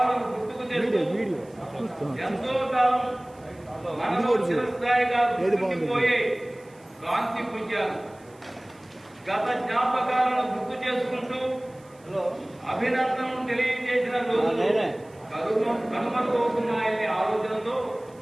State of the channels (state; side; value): noise; right; hiss, 30 dB below the sound